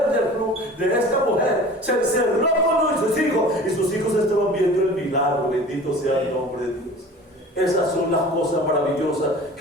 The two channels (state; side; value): normal; both; correlation 0.41